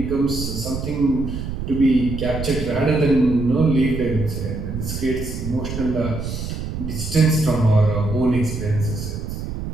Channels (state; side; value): noise; right; rumble, 6 dB below the sound